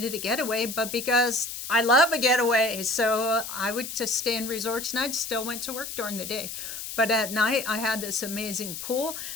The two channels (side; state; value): left; noise; hiss, 8 dB below the sound